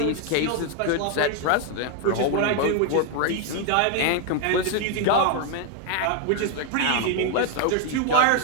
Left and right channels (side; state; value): both; different; correlation 0.01